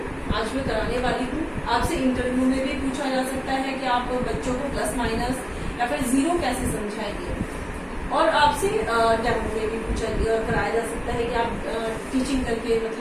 आज मैं कराने वाली हूँ। आपसे इंटरव्यू में भी पूछा जा सकता है कि आप बच्चों को प्लस माइनस या फिर जीरो कैसे समझाएंगे, और आपसे डेमो में भी पूछा कराया जा सकता है कि आप टीचिंग करके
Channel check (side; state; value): both; identical; correlation 1.00